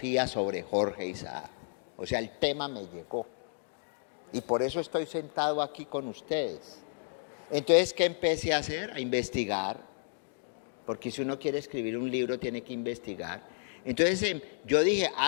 sobre Jorge Isaac. O sea, el tema me llegó. Y por eso estoy sentado aquí con ustedes. Entonces, ¿qué empecé a hacer? A investigar. Porque si uno quiere escribir un libro, tiene que investigar. Entonces, yo dije,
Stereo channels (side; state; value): right; silent; digital silence